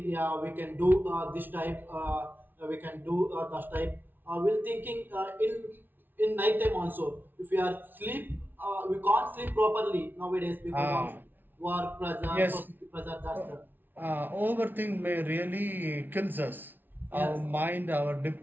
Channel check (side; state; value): left; late; 0.092 ms